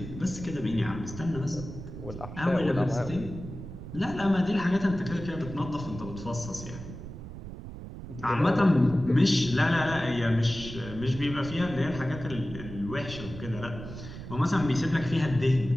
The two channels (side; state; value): right; noise; rumble, 11 dB below the sound